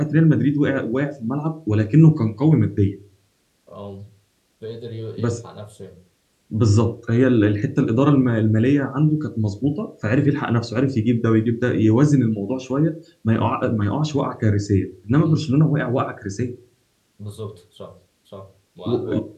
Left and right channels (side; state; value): both; identical; correlation 1.00